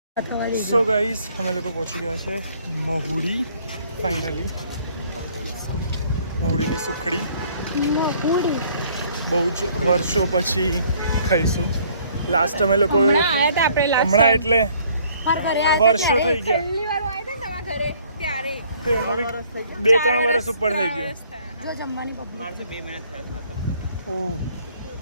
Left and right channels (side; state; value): both; inverted; correlation -0.60